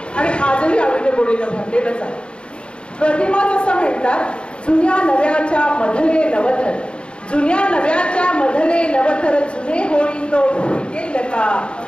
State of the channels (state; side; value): late; right; 0.054 ms